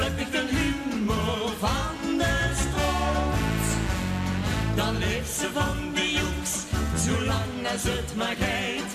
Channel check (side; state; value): both; identical; correlation 1.00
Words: ik de humor van de stroot. Dan leeft ze van de joeks, zolang als het maar geit,